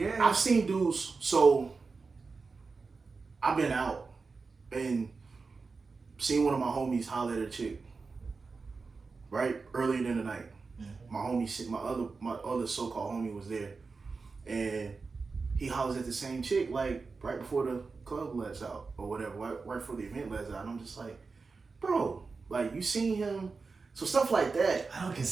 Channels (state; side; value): quieter; left; 4.4 dB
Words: I've seen dudes. So I've been out and seen one of my homies holler at a chick. Right earlier in the night, my homie, my other so-called homie was there, and he hollers at the same chick like right before the club lets out or whatever, right before the event lets out. And I'm just like, bro, like you seen him. So stuff like that. I don't